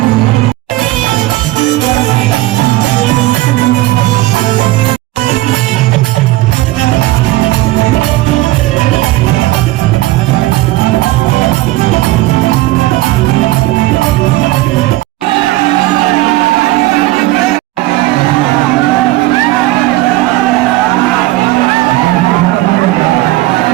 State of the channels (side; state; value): left; quieter; 18.1 dB